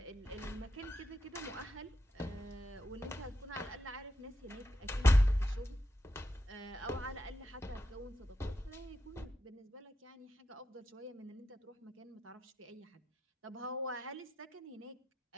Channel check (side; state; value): both; normal; correlation 0.86